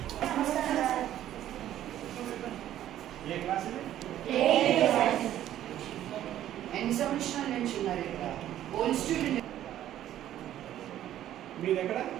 ఏ క్లాస్ ఎన్ని సంవత్సరాల నుంచి ఉన్నారు ఇక్కడ? Old student. మీది ఎక్కడ?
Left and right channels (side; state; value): left; quieter; 12.1 dB